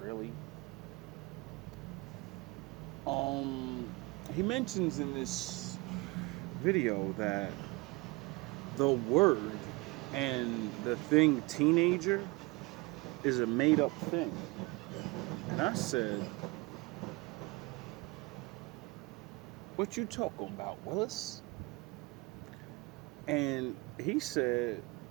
really. He mentions in this video that the word and the thing teenager is a made-up thing. And I said, what you talking about, Willis? And he said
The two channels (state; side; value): quieter; left; 24.5 dB